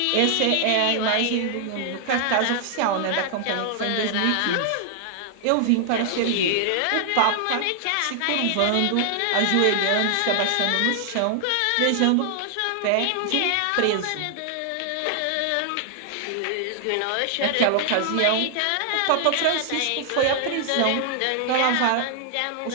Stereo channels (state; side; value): different; both; correlation 0.00